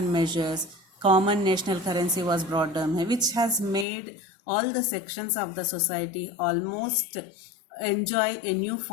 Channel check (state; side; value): drops out; right; at 3.9 s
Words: measures, common national currency was brought down, which has made all the sections of the society almost enjoy a